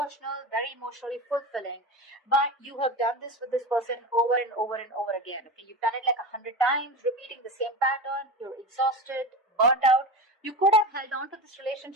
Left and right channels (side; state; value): both; normal; correlation 0.26